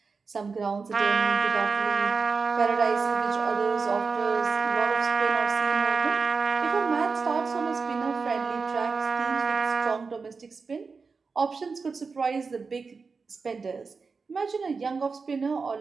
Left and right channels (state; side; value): quieter; left; 4.7 dB